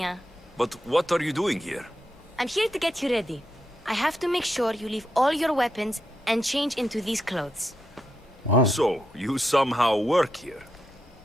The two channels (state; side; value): normal; both; correlation 0.84